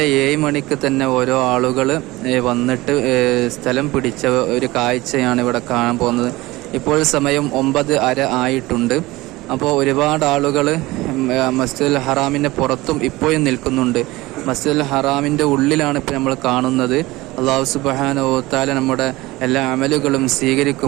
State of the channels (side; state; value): left; quieter; 19.8 dB